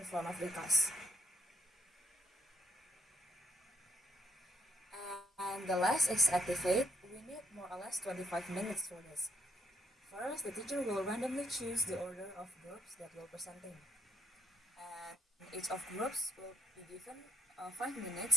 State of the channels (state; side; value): normal; both; correlation 0.71